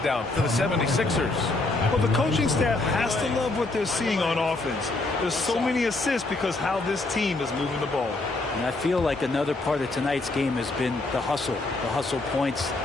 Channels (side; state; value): right; quieter; 3.1 dB